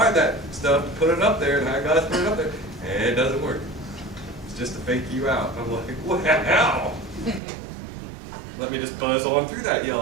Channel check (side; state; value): left; drops out; at 7.4 s